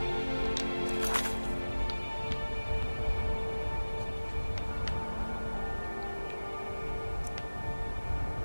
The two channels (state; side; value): inverted; both; correlation -1.00